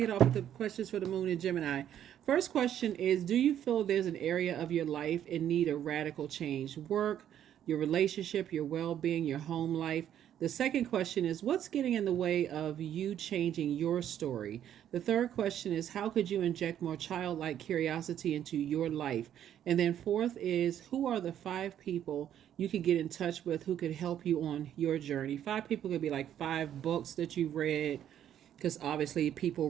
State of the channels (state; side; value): quieter; left; 10.4 dB